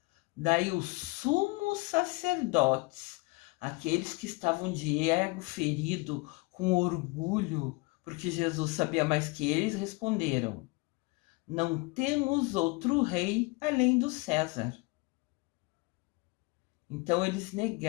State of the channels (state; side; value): quieter; right; 26.0 dB